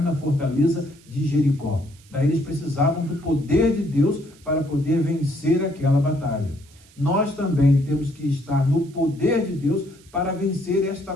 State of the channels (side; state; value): right; noise; hiss, 27 dB below the sound